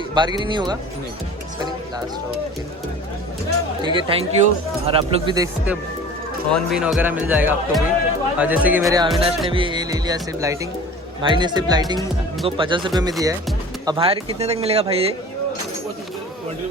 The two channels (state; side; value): normal; both; correlation 0.41